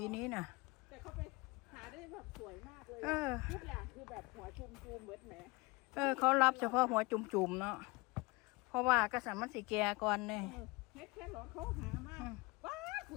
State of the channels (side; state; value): right; quieter; 25.0 dB